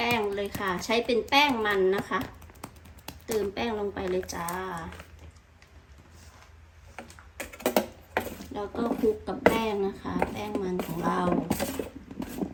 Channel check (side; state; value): both; identical; correlation 1.00